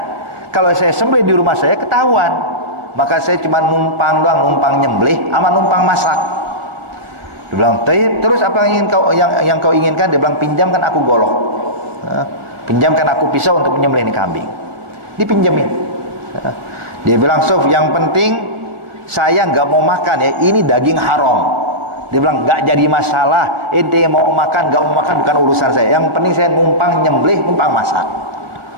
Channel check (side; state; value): left; late; 1.5 ms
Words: Kalau saya sembelih di rumah saya ketahuan. Maka saya cuma numpang doang, numpang nyembelih sama numpang masak. Dia bilang, terus apa yang kau inginkan? Dia bilang, pinjamkan aku golok. Pinjamkan aku pisau untuk menyembelih ini kambing. Dipinjemin. Dia bilang, Sof, yang penting saya nggak mau makan ya, ini daging haram. Dia bilang, nggak jadi masalah, ente mau makan nggak mau makan bukan urusan saya. Yang penting saya numpang nyembelih, numpang masak.